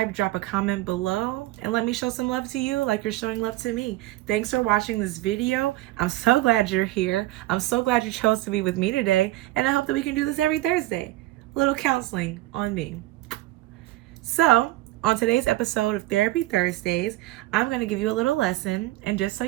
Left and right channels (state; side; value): quieter; left; 17.2 dB